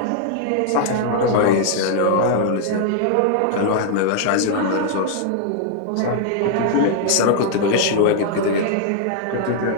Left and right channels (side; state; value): both; different; correlation -0.01